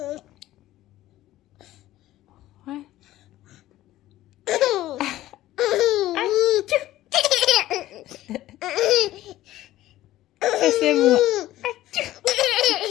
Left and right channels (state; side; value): quieter; right; 15.0 dB